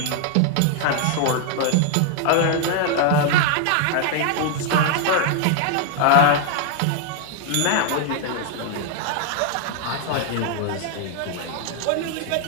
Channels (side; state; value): both; different; correlation 0.00